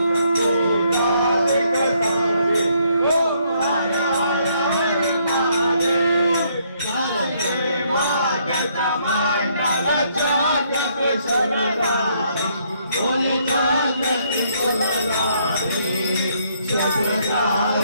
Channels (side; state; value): both; inverted; correlation -0.70